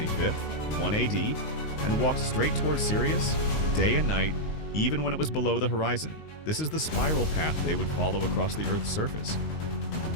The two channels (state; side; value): late; right; 19 ms